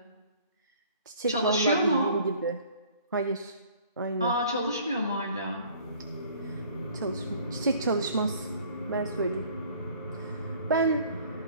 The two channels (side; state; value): both; inverted; correlation -0.54